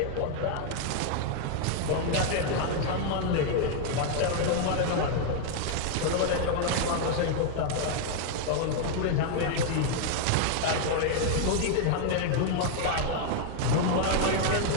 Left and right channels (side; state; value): both; different; correlation 0.00